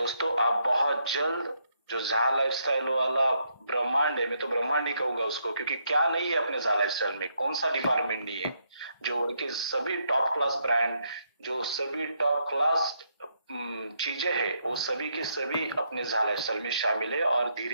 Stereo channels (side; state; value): both; inverted; correlation -0.76